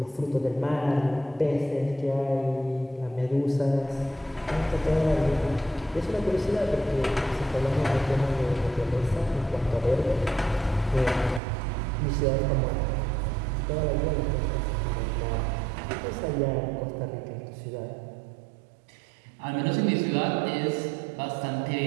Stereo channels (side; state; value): left; drops out; at 11.4 s